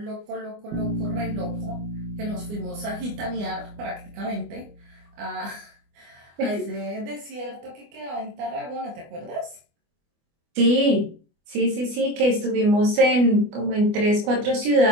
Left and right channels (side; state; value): left; late; 24 ms